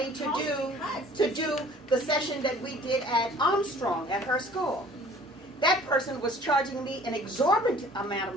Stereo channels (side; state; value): both; normal; correlation 0.51